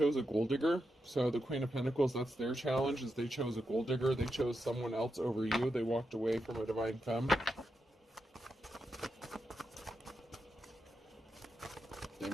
a gold digger. So the Queen of Pentacles, that's their challenge, is they chose a gold digger. They chose someone else over you. They walked away from a divine femme. They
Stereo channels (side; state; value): both; normal; correlation 0.86